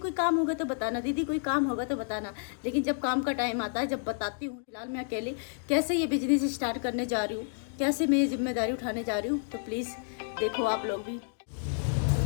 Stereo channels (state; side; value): silent; right; digital silence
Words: काम होगा तो बताना, दीदी कोई काम होगा तो बताना, लेकिन जब काम का टाइम आता है जब बताती हूँ। फिलहाल मैं अकेले कैसे ये बिजनेस स्टार्ट करने जा रही हूँ, कैसे मैं ये जिम्मेदारी उठाने जा रही हूँ, तो प्लीज़ देखो आप लोग भी।